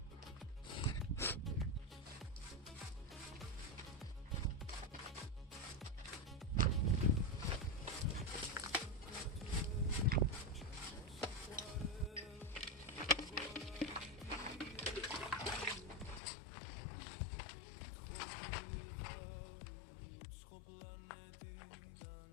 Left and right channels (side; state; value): right; drops out; at 16.2 s